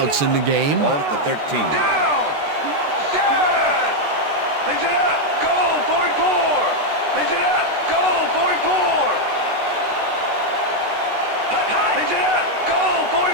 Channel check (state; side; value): late; left; 13 ms